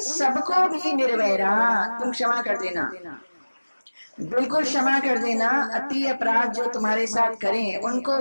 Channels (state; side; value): inverted; both; correlation -1.00